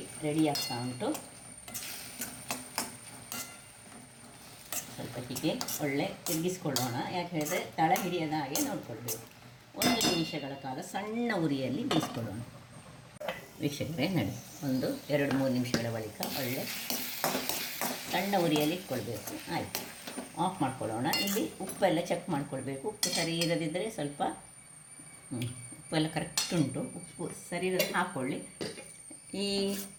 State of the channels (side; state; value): both; identical; correlation 1.00